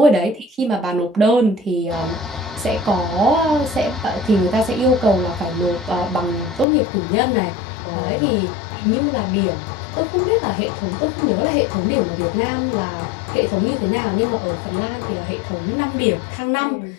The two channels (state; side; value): drops out; right; at 6.7 s